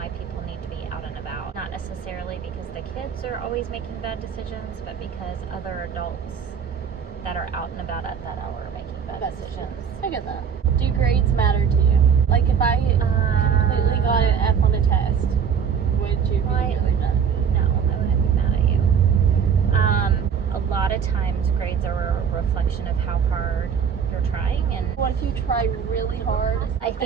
people need to be out and about. Not necessarily because the kids are always making bad decisions, but because other adults that are out and about at that hour are making bad decisions. I get that. Do grades matter to you? Like if I completely got an F on a test, would you be really mad at me? No, I wouldn't be mad at you. A lot of times grades are a reflection of how hard you're trying, and What if you try really hard I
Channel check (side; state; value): left; quieter; 7.1 dB